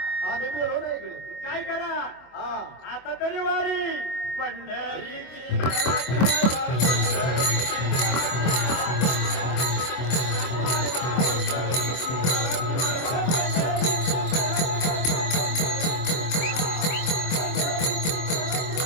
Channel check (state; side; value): late; right; 24 ms